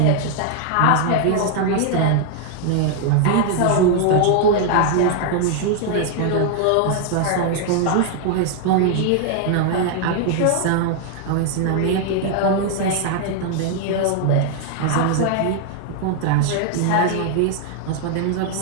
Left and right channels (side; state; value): both; different; correlation 0.00